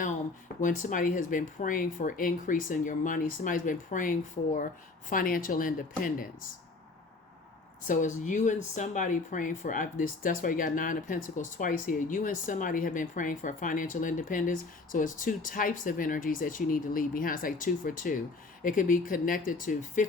When somebody has been praying for increase in your money, somebody's been praying for financial independence. So it's you and somebody praying for this. That's why you got 9 of Pentacles twice here. You and somebody have been praying for financial independence. So it's 2 types of energies that you need to leave behind. It's like 2 for 2. It could be connected to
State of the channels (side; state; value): right; quieter; 3.6 dB